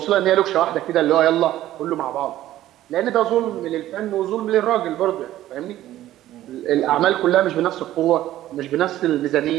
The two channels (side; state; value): left; quieter; 13.9 dB